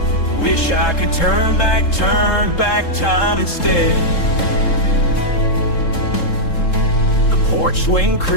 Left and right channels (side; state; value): right; late; 3.7 ms